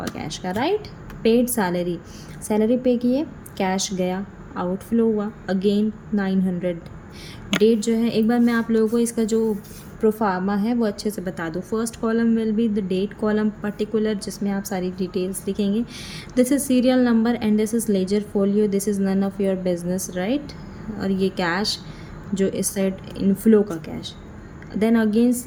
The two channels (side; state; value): both; identical; correlation 1.00